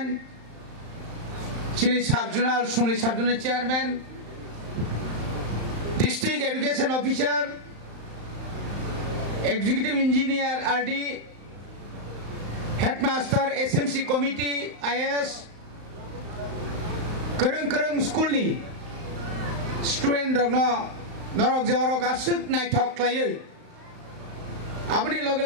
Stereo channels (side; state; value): left; late; 35 ms